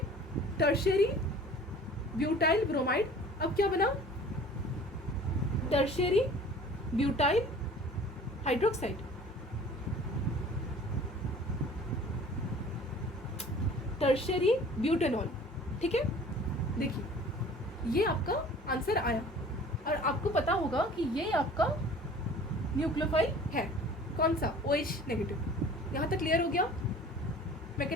Tertiary butyl bromide. अब क्या बना? Tertiary butyl hydroxide. Tertiary butanol. ठीक है, देखिए ये आपका आंसर आया और आपको पता होगा कि ये आपका न्यूक्लियोफाइल है। कौन सा? OH negative. यहाँ तक क्लियर हो गया?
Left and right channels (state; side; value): normal; both; correlation 0.46